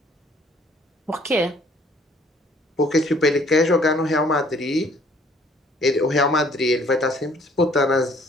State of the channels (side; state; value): both; normal; correlation 0.59